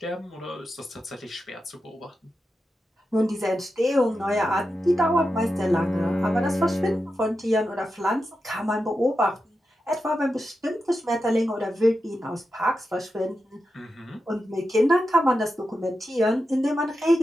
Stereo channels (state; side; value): normal; both; correlation 0.89